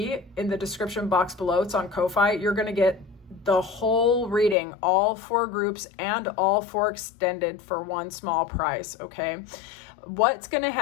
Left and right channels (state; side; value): drops out; right; at 4.5 s